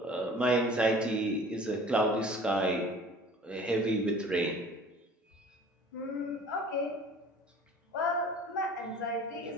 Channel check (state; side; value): normal; both; correlation 0.46